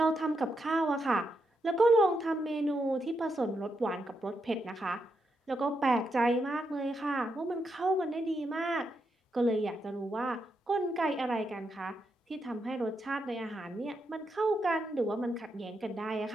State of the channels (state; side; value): normal; both; correlation 0.83